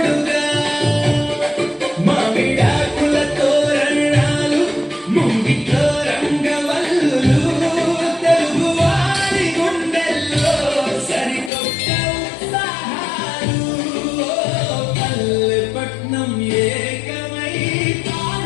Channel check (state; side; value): drops out; right; at 11.5 s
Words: మామిడాకుల తోరణాలు, ముంగిట్లో రంగవల్లులు, తెలుగువారి గుండెల్లో సరికొత్త ఉత్సాహాలు. పల్లెపట్నం ఏకమై